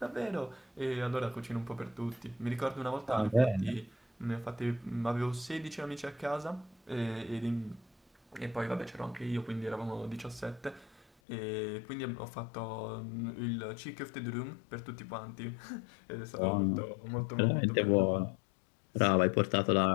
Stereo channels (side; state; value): right; drops out; at 11.1 s